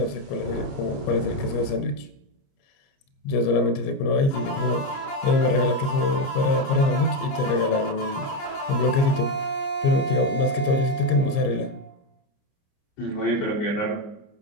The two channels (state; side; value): late; right; 29 ms